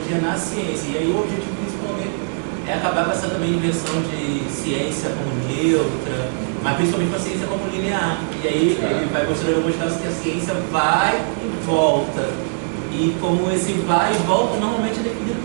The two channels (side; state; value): left; silent; digital silence